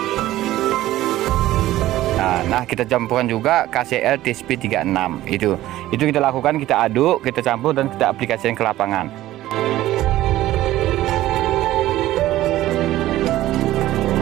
Nah, kita campuran juga KCL TSP 36. Itu kita lakukan, kita aduk, kita campur, dan kita aplikasikan ke lapangan.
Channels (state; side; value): quieter; left; 15.1 dB